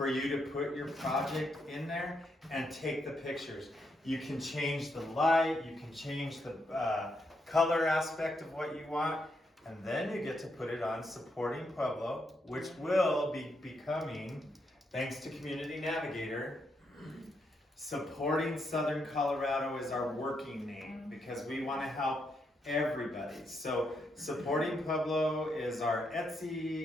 you to put your project in there and take the pictures. You can change the light, you can change the color aspect of what you want, and then you get to put it on Supporting Pueblo, which will be becoming, thanks to Community Navigator, Supporting Southern Colorado is our working name because we want to help everybody. So Supporting Pueblo is our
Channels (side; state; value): both; normal; correlation 0.79